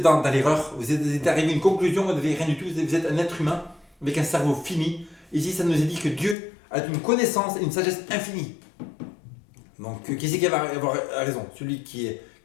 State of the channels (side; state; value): right; drops out; at 6.4 s